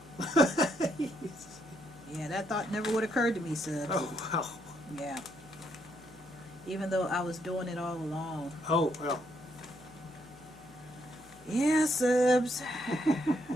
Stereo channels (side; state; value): left; noise; hum, 24 dB below the sound